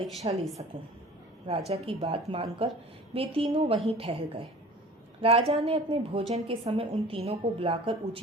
ले सकूं। राजा की बात मानकर वे तीनों वहीं ठहर गए। राजा ने अपने भोजन के समय उन तीनों को बुलाकर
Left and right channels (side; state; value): both; normal; correlation 0.43